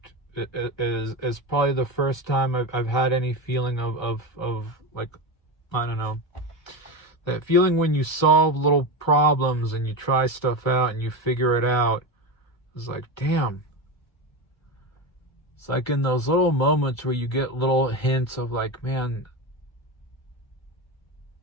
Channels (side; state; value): right; late; 1.3 ms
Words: is probably the first time I've had any feeling of like, I don't know, that feeling when you solve little problems and you try stuff out and you figure it out. It's like, damn. It's like in those little moments where you get little hints of like, man,